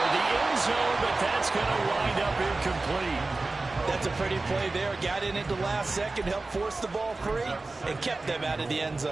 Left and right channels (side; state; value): left; quieter; 3.4 dB